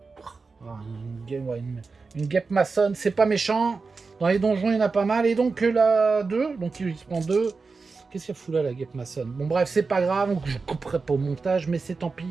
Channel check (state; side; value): quieter; left; 4.4 dB